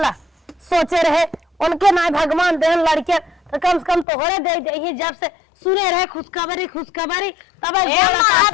सोचे रहे उनके ना भगवान देहन लड़के तो कम से कम तोहरे दे दे जब से सुने रहे खुशखबरी तब गोला का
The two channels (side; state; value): right; drops out; at 4.0 s